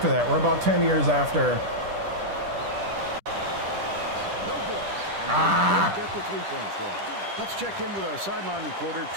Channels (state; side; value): late; left; 10 ms